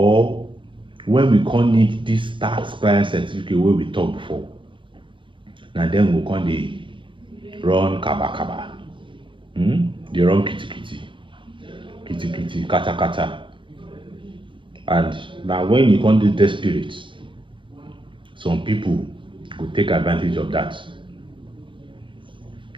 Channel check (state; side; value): late; left; 0.24 ms